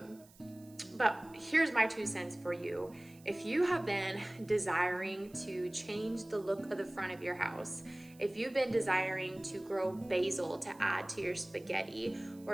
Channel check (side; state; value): right; noise; hiss, 26 dB below the sound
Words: But here's my 2 cents for you. If you have been desiring to change the look of the front of your house, if you've been desiring to grow basil to add to your spaghetti, or